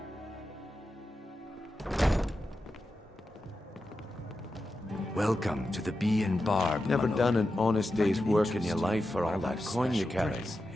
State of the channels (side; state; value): both; normal; correlation 0.90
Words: Welcome to the Bee and Barb. Never Dimhollow. done an honest day's Find it work in your interesting. life for all What that about coin you special carry. drinks?